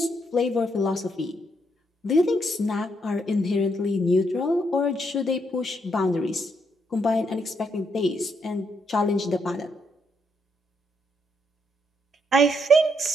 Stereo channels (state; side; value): normal; both; correlation 0.76